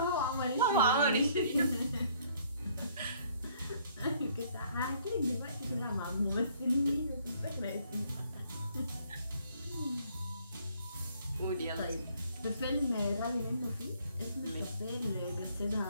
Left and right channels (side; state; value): both; inverted; correlation -0.63